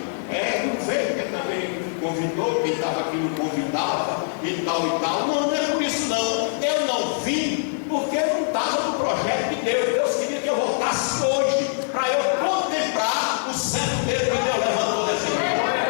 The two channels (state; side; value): silent; right; digital silence